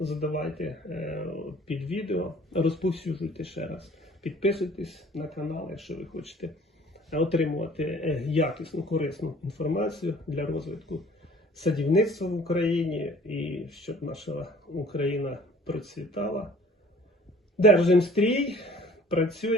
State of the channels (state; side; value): normal; both; correlation 0.53